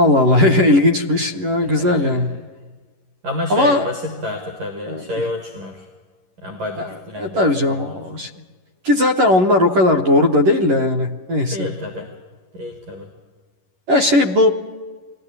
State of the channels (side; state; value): left; late; 11 ms